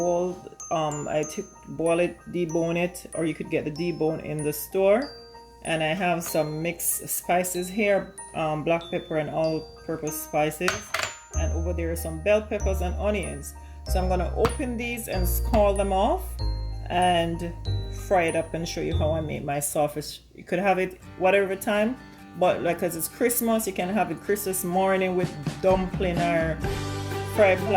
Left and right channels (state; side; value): identical; both; correlation 1.00